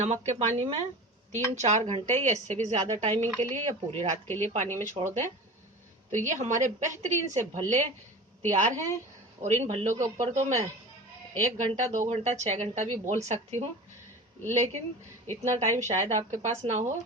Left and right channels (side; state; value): both; normal; correlation 0.34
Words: के पानी में 3-4 घंटे या इससे भी ज्यादा टाइमिंग के लिए या पूरी रात के लिए पानी में छोड़ दें तो ये हमारे बेहतरीन से भल्ले तैयार हैं। और इन भल्लों के ऊपर तो मैं 1 घंटा, 2 घंटा, 6 घंटा भी बोल सकती हूँ, लेकिन इतना टाइम शायद आपके पास ना हो।